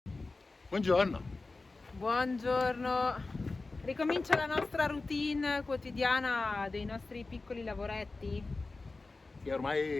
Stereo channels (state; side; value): quieter; right; 3.5 dB